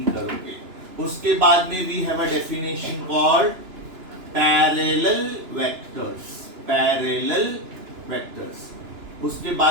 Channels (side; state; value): left; late; 2.9 ms